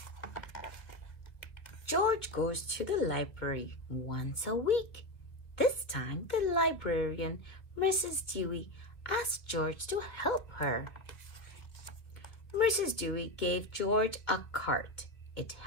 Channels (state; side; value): late; right; 1.7 ms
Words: George goes to the library once a week. This time the librarian, Mrs. Dewey, asked George to help her. Mrs. Dewey gave George a cart. It